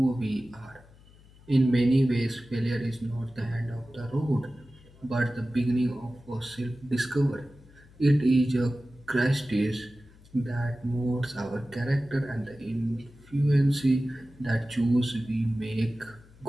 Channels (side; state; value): left; noise; hum, 25 dB below the sound